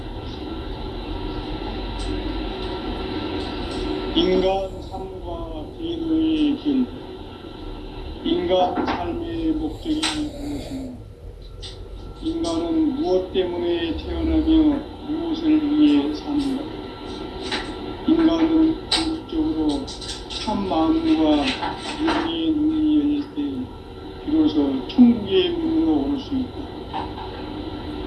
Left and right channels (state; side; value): identical; both; correlation 1.00